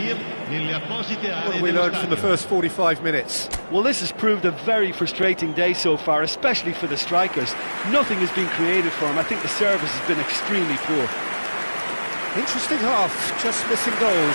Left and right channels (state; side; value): inverted; both; correlation -1.00